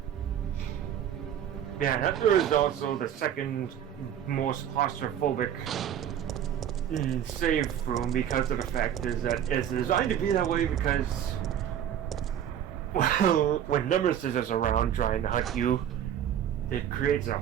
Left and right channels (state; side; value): quieter; left; 9.9 dB